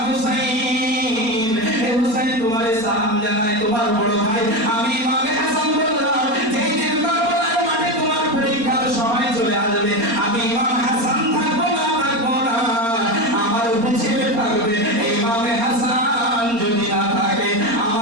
হুসাইন, হে হুসাইন তোমারে সালাম জানাই, তোমার বড় ভাই আমি ইমামে হাসান বললাম, যেই দিন কারবালার মাঠে তোমার পরীক্ষার সময় চলে আসবে, আমি ইমাম হাসান থাকবো না, আমার উপরে ছেলে থাকবে। ইমামে হাসান যদি না থাকে,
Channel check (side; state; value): left; late; 4.3 ms